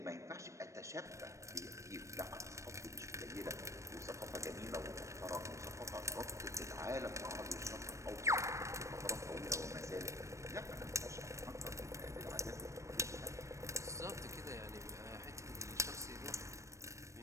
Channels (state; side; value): late; left; 0.15 ms